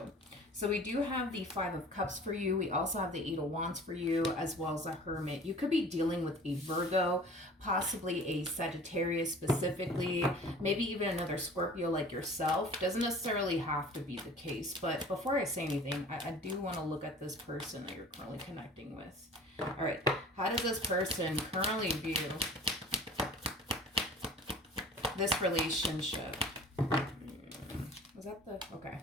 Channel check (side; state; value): both; normal; correlation 0.44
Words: So we do have the Five of Cups for you. We also have the Eight of Wands for you, as well as a Hermit. You could be dealing with a Virgo, possibly a Sagittarius specifically, maybe even another Scorpio like yourself. Doesn't necessarily have to be the case. But before I say anything, I do want to look at this person that you're currently connecting with. All right, how does this person currently view this relationship? Was that the... Okay.